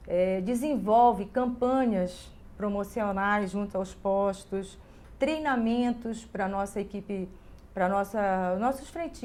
desenvolve campanhas promocionais junto aos postos, treinamentos para a nossa equipe, para nossos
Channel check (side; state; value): both; identical; correlation 1.00